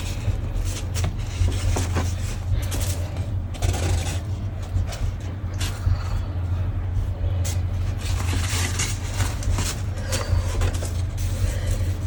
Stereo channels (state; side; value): identical; both; correlation 1.00